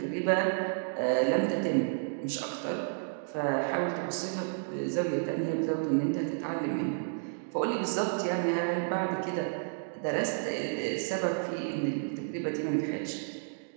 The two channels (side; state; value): left; silent; digital silence